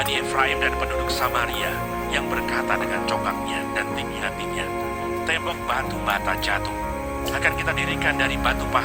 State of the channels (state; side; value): identical; both; correlation 1.00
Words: Efraim dan penduduk Samaria, yang berkata dengan congkaknya dan tinggi hatinya, tembok batu bata jatuh, akan kita dirikan dari batu